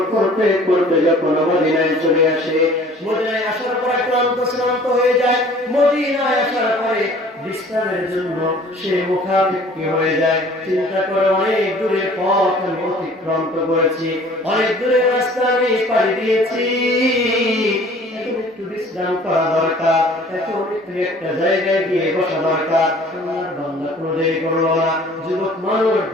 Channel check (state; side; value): normal; both; correlation 0.50